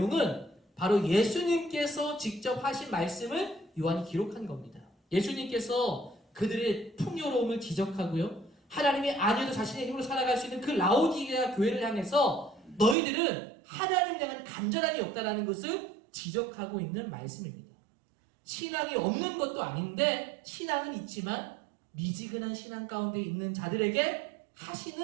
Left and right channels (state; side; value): drops out; left; at 13.0 s